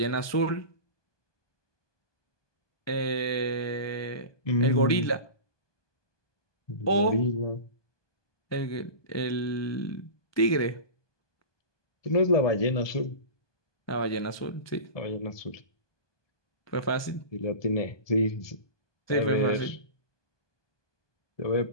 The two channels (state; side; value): late; right; 1.2 ms